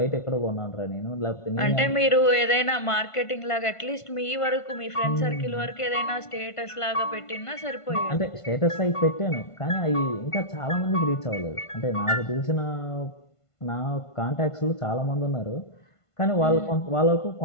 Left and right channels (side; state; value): right; late; 1.5 ms